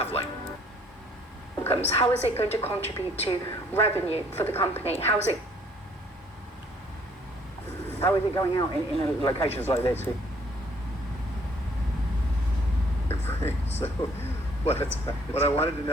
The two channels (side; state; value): both; normal; correlation 0.61